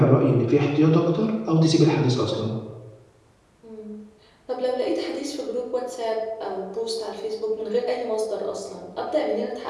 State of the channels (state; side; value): identical; both; correlation 1.00